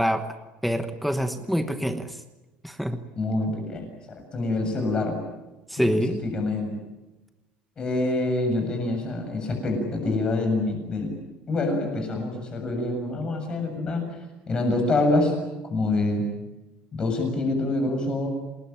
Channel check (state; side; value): normal; both; correlation 0.69